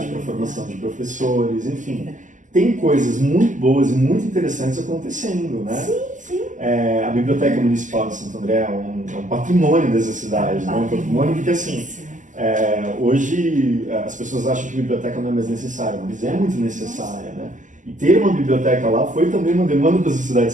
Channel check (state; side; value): late; left; 0.37 ms